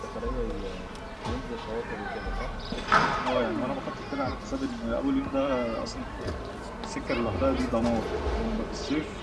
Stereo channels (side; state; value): both; identical; correlation 1.00